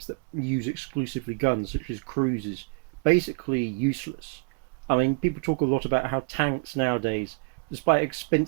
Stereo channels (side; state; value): left; quieter; 34.7 dB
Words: that use exclusively guns, such as cruisers, basically useless. People talk a lot about how tanks nowadays, despite how